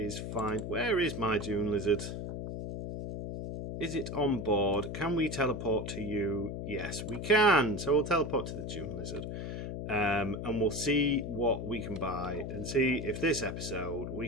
fine. Where is my Dune Lizard? Is it on board? Can we teleport to you? Yes, we can. So we'll teleport to the Dune Lizard. And we'll see what we can buy, and see if this episode we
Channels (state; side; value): noise; left; hum, 5 dB below the sound